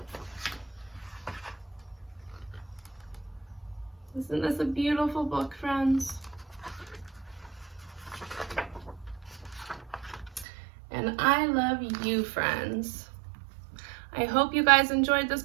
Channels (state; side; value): drops out; left; at 10.5 s